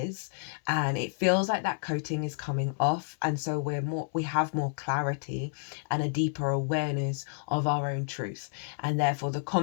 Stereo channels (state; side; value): silent; right; 58 dB below the other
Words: And it feels like that coating is coming off, and so we have more clarity and a deeper awareness of our own truth, and therefore the